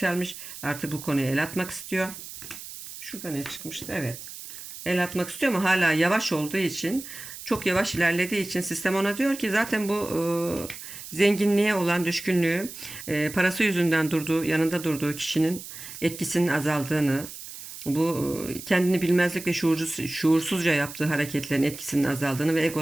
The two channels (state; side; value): noise; right; hiss, 12 dB below the sound